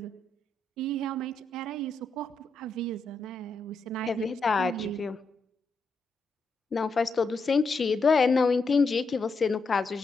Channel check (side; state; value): right; quieter; 3.3 dB